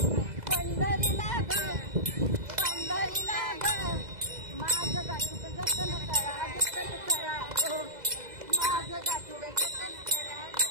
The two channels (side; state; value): left; late; 2.0 ms